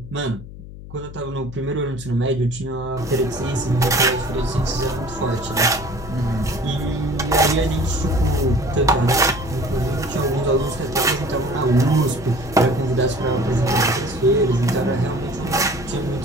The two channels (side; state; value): left; noise; hum, 14 dB below the sound